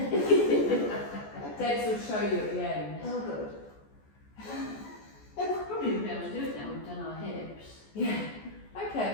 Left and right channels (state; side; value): late; right; 14 ms